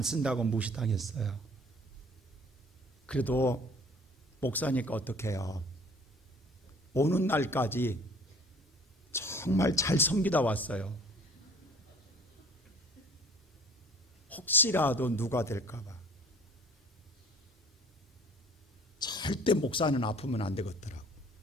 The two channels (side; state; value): both; normal; correlation 0.51